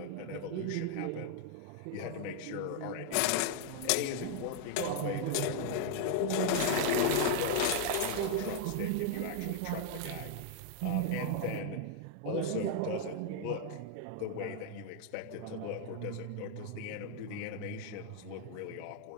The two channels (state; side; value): different; both; correlation 0.00